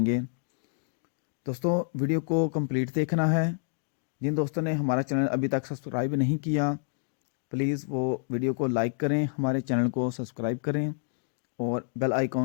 दोस्तों वीडियो को कंप्लीट देखना है। जिन दोस्तों ने हमारा चैनल अभी तक सब्सक्राइब नहीं किया, प्लीज़ वो वीडियो को लाइक करें, हमारे चैनल को सब्सक्राइब करें और बेल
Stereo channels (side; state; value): right; silent; digital silence